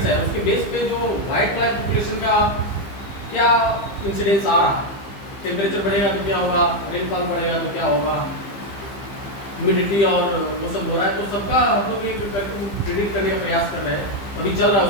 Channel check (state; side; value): late; right; 15 ms